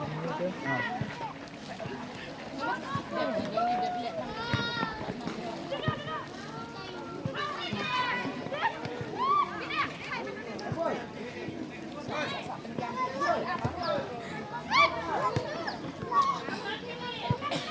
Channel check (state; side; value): identical; both; correlation 1.00